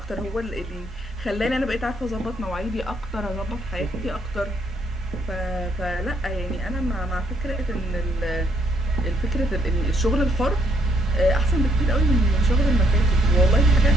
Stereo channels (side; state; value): both; normal; correlation 0.70